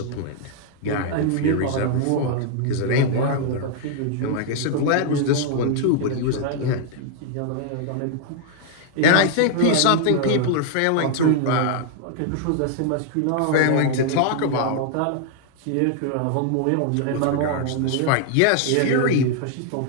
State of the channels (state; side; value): different; both; correlation 0.00